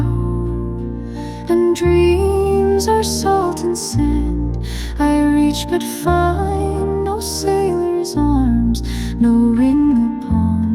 and dreams are salt and sand. I reach but find no sailor's arms, no ring upon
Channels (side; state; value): both; identical; correlation 1.00